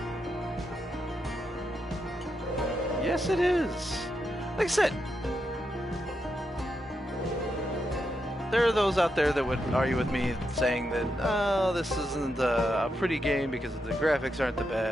Yes, it is. Like I said, there are those out there that would argue with me saying that, oh, this isn't a pretty game because the graphics aren't the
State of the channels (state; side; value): normal; both; correlation 0.84